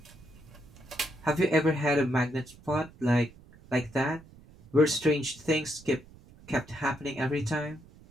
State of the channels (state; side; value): noise; right; rumble, 23 dB below the sound